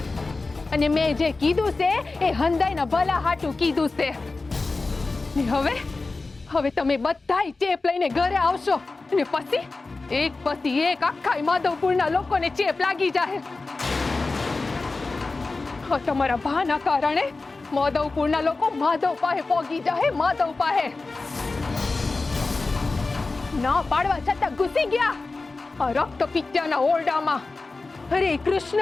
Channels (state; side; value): quieter; right; 3.6 dB